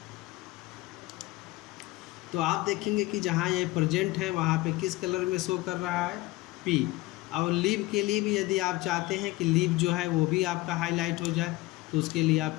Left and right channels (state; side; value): quieter; right; 19.6 dB